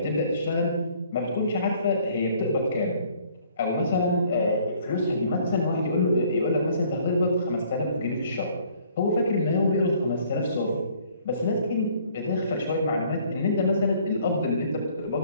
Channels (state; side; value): inverted; both; correlation -0.60